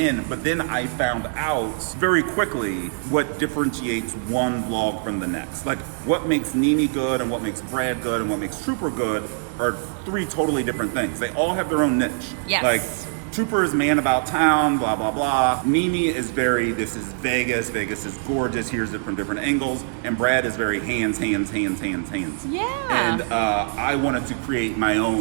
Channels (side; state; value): left; silent; digital silence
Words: but then I found out very quickly what differentiates one vlog from the next. Like what makes Nini good and what makes Brad good and what makes Trooper good are 3 totally different things. They all have their own niche. Yes. Like Trooper is man about town, blah, blah, blah. Nini is this is Vegas. Vegas is gorgeous. Here's it from different angles. And Brad is very hands. Yeah. And I wanted to create my